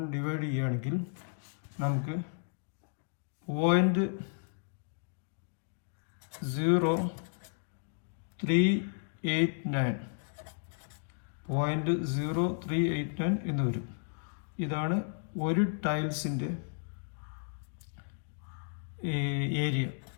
ഡിവൈഡ് ചെയ്യുകയാണെങ്കിൽ നമുക്ക് 0.0389 എന്ന് വരും. ഇതാണ് ഒരു ടൈൽസിൻ്റെ ഏരിയ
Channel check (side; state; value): right; silent; digital silence